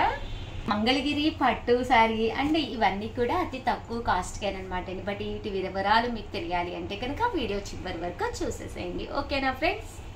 మంగళగిరి పట్టు సారీ అండ్ ఇవన్నీ కూడా అతి తక్కువ కాస్ట్కేనమాట. బట్ వీటి వివరాలు మీకు తెలియాలి అంటే కనుక వీడియో చివరి వరకు చూసేసేయండి. ఓకేనా friends?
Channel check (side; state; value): both; identical; correlation 1.00